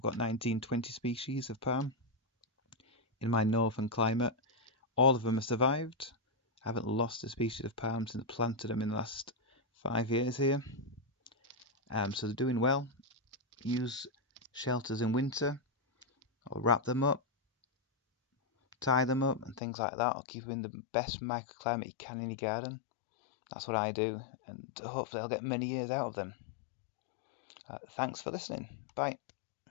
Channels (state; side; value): drops out; right; at 19.6 s